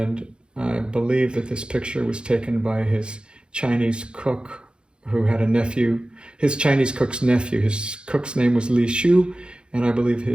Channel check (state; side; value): late; left; 0.052 ms